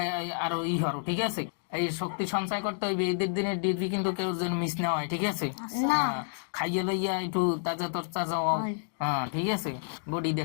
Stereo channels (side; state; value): right; silent; digital silence